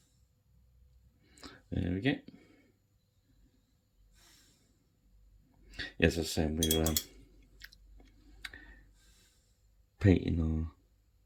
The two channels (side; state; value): both; identical; correlation 1.00